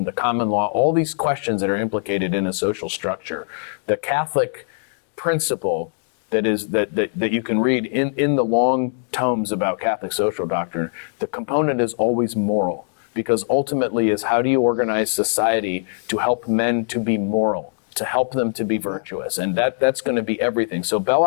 the common law, all these questions that are implicated in a social structure, the Catholic principle that you can read in the long tomes about Catholic social doctrine, the component is always moral, because ultimately is how do you organize society to help men to be moral, to help them to be virtuous, and that's going to be everything. So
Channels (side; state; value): right; silent; digital silence